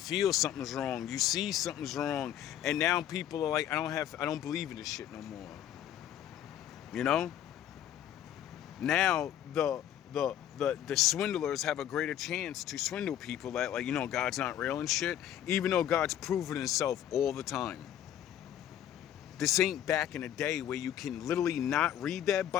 something's wrong. You see something's wrong. And now people are like, I don't believe in this shit no more. You know? Now the swindlers have a greater chance to swindle people that, like, you know, God's not real and shit, even though God's proven himself all the time. This ain't back in the day where you can literally not read that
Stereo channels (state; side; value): quieter; right; 11.0 dB